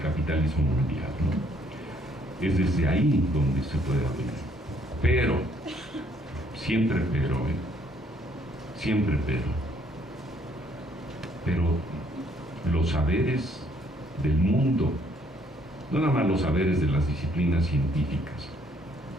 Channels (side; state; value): both; normal; correlation 0.66